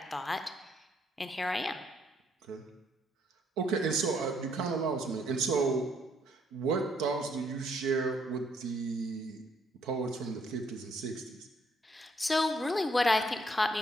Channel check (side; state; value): both; normal; correlation 0.69